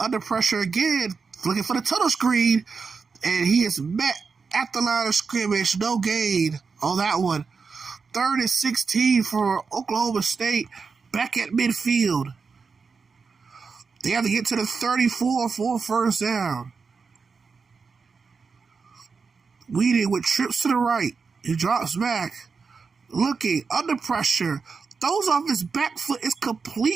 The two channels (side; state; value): left; quieter; 5.1 dB